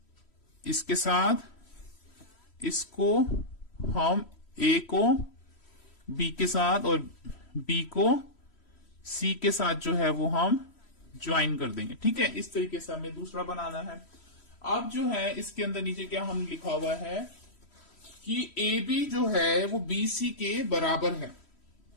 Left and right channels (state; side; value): late; right; 3.1 ms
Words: इसके साथ, इसको हम ए को बी के साथ और बी को सी के साथ जो है वो हम ज्वाइन कर देंगे। ठीक है, इस तरीके से हमें दूसरा बनाना है। अब जो है इसके अंदर नीचे क्या हम लिखा हुआ है कि ए बी जो है वो बी सी के बराबर है।